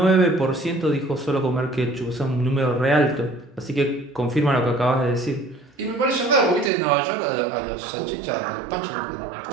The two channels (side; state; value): left; drops out; at 6.7 s